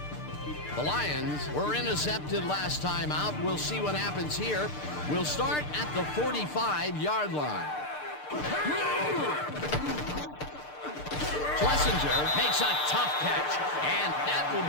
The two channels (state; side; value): late; right; 6.7 ms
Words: The Lions were intercepted last time out. We'll see what happens here. We'll start at the 45-yard line. Schlesinger makes a tough catch, and that will